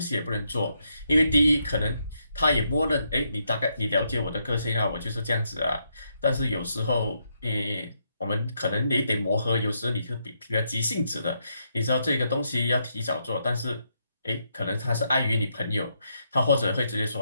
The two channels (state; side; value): inverted; both; correlation -0.79